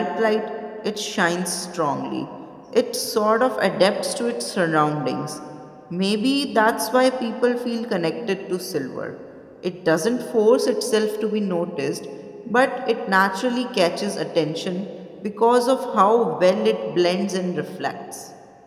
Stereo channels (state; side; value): identical; both; correlation 1.00